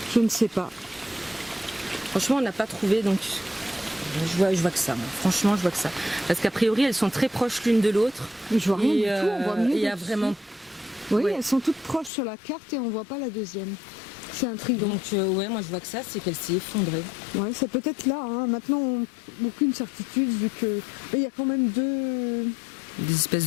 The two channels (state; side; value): drops out; right; at 12.1 s